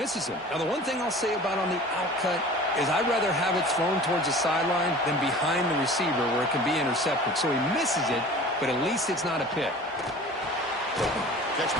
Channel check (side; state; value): both; normal; correlation 0.42